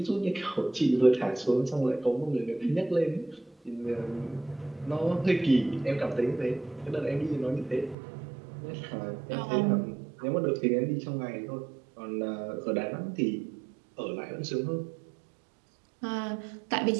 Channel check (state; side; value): drops out; left; at 8.0 s